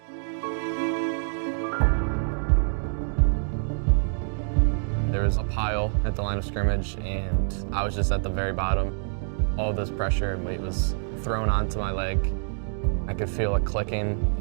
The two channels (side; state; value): left; silent; digital silence